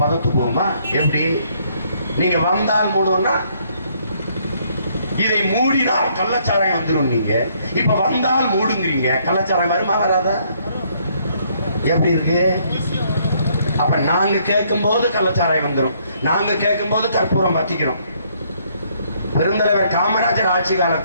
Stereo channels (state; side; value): inverted; both; correlation -0.67